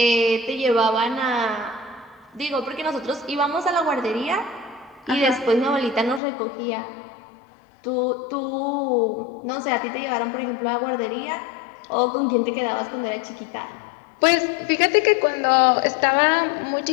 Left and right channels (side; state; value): right; drops out; at 6.2 s